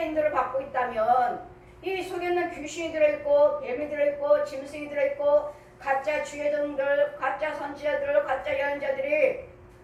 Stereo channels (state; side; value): identical; both; correlation 1.00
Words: 인도를 받고 있다면 이 속에 있는 귀신이 들어있고 뱀이 들어있고 짐승이 들어있고 가짜 주예종들 가짜 선지자들 가짜 예언자들이